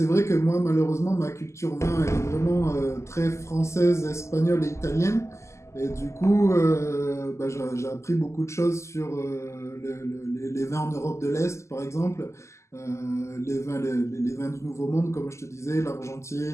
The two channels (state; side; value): late; right; 0.13 ms